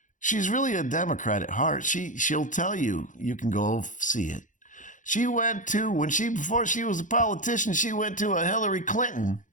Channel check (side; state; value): right; late; 0.37 ms